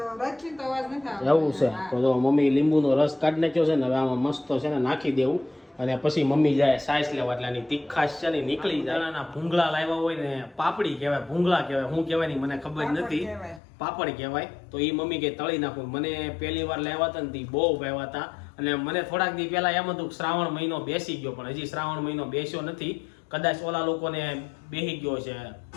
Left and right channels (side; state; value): right; drops out; at 13.6 s